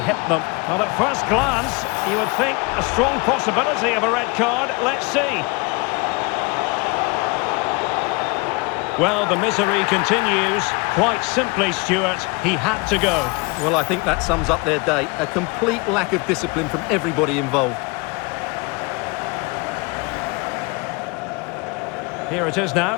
them? Well, at first glance, you would think a strong possibility of a red card. Let's see. Well, the misery continues. Quite simply, Stuart, he had to go. Well, I think that sums up their day. A complete lack of discipline from everybody involved. Here it is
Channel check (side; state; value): right; quieter; 27.9 dB